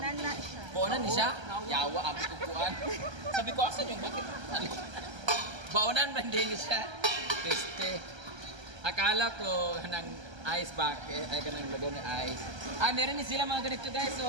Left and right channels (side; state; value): left; late; 1.3 ms